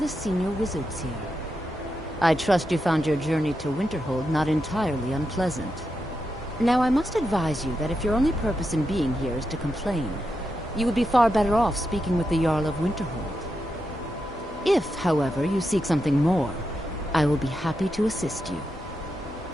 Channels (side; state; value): both; normal; correlation 0.86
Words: senior wizards here. I trust you found your journey to Winterhold not entirely unpleasant. Now, I must advise you that if your only purpose in being here is to complain, you would be far better off speaking with the Jarl of Winterhold. If, however, you seek something more, I will be happy to assist you.